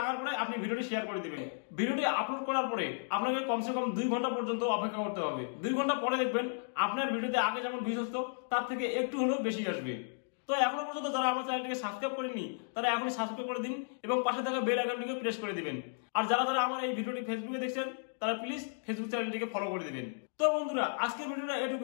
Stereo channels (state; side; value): silent; right; digital silence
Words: পরে আপনি ভিডিওটি শেয়ার করে দিবেন। ভিডিওটি আপলোড করার পরে আপনাকে কমসে কম 2 ঘন্টা পর্যন্ত অপেক্ষা করতে হবে। 2 ঘন্টা পরে দেখবেন আপনার ভিডিওতে আগে যেমন ভিউজ আসতো তার থেকে একটু হলেও বেশি আসবে। তো এখনো পর্যন্ত যারা আমার চ্যানেলটিকে সাবস্ক্রাইব করেননি তারা এখনই সাবস্ক্রাইব করে দিন এবং পাশে থাকা বেল আইকনটিকে প্রেস করে দিবেন। আর যারা আমার এই ভিডিওটি ফেসবুকে দেখছেন তারা প্লিজ ফেসবুক চ্যানেলটিকে ফলো করে দিবেন। তো বন্ধুরা আজকের ভিডিওটা